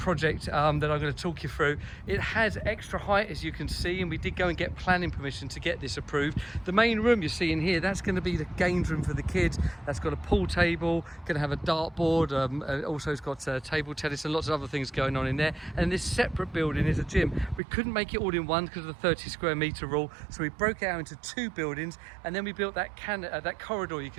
that I'm going to talk you through. It has extra height, as you can see, and we did go and get planning permission to get this approved. The main room you're seeing here, that's going to be the games room for the kids. That's got a pool table, going to have a dartboard, also it's got table tennis and lots of other things going on in there. And this separate building is a gym. We couldn't make it all in one because of the 30 square meter rule, so we broke it out into 2 buildings, and then we built that corridor you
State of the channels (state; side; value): drops out; left; at 17.6 s